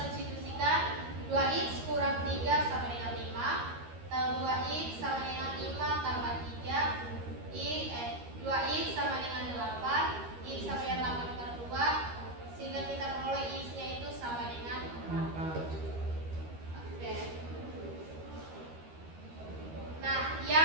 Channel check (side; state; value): left; late; 13 ms